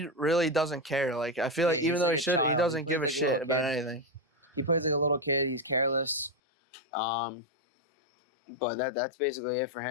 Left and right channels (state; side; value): drops out; right; at 6.4 s